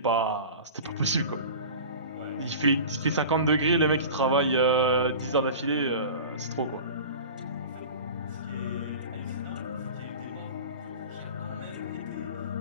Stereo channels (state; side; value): inverted; both; correlation -0.35